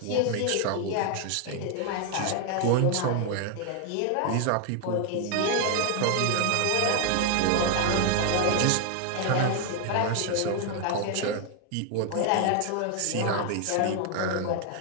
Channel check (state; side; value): different; both; correlation 0.01